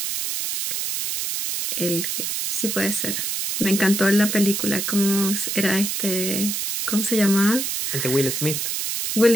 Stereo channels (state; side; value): noise; right; hiss, 2 dB below the sound